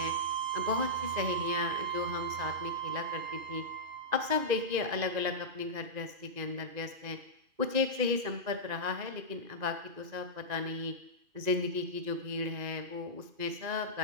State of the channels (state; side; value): late; left; 2.5 ms